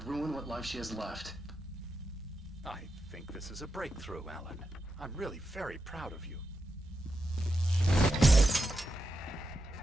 what life she has left. I think this is a breakthrough, Alan. I'm really very proud of you.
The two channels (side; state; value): both; normal; correlation 0.88